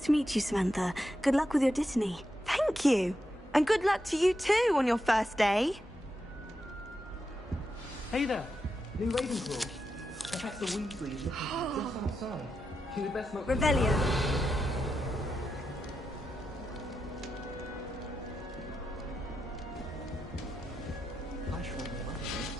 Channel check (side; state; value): both; normal; correlation 0.86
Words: to meet you, Samantha. Good luck with your Dittany. Thank you. And good luck to you too on your first day. Hey there, new Ravenclaw. Professor Weasley is looking just outside. She'd best not. Revelio. I shrunk them up.